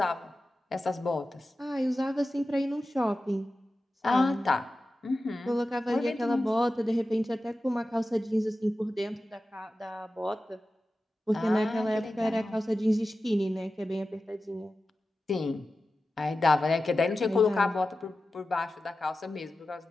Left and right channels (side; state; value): both; normal; correlation 0.94